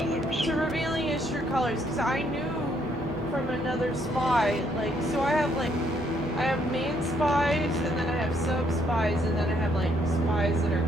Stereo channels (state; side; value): normal; both; correlation 0.70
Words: To revealing his true colors, because I knew from another spy, like, so I have main spies, and then I have sub spies, and then I have like spies that are